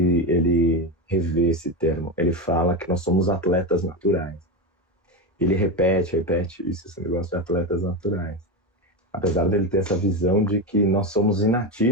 revê esse termo. Ele fala que nós somos atletas naturais. Ele repete isso, esse negócio de atletas naturais. Apesar dele ter essa visão de que nós somos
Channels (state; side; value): normal; both; correlation 0.16